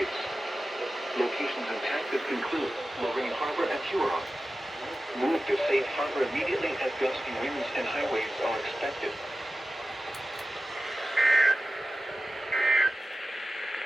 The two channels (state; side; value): normal; both; correlation 0.94